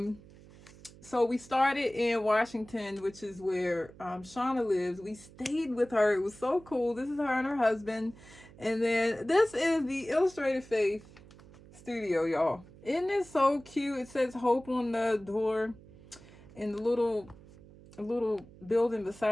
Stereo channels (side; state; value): right; noise; hum, 21 dB below the sound